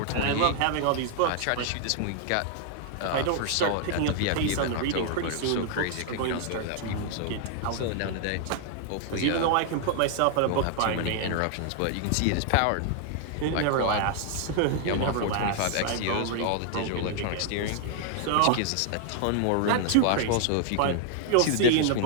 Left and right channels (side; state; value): both; different; correlation 0.00